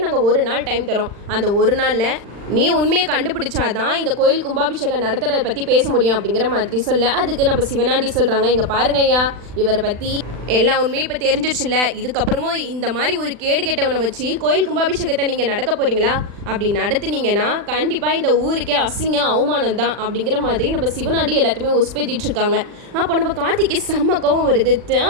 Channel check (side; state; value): left; late; 40 ms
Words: நாங்கள் ஒரு நாள் டைம் தரோம், அந்த ஒரு நாளில் நீ உண்மையை கண்டுபிடிச்சாதான் இந்த கோயில் கும்பாபிஷேகம் நடத்துறதை பற்றி பேச முடியும் அப்படிங்கிற மாதிரி சொல்ல. அதுக்கு நம்ம சிவனாண்டி சொல்கிறாங்க, இங்கே பாருங்க ஐயா, இவரை பற்றி எல்லா உண்மையும் இப்போ தெரிஞ்சிருச்சுல்ல, இதுக்கப்புறமும் இந்த மாதிரி ஒரு கேடு கெட்டவனை வச்சு கோயில் கும்பாபிஷேகத்தை நீங்கள் நடக்க போகிறீங்களா, அப்படி நடத்துனீங்கன்னா கண்டிப்பாக இந்த ஊருக்கே அசிங்க அவமானம் தான் அப்படிங்கிற மாதிரி நம்ம சிவனாண்டி எல்லாத்தையுமே உஸ்பேத்திட்டு இருக்காங்க. அப்போ நம்ம கார்த்திக்கு செம்மக்கவும் வருது,